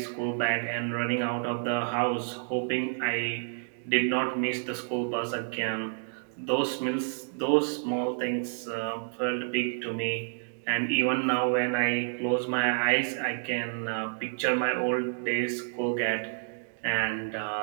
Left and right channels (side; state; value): left; silent; digital silence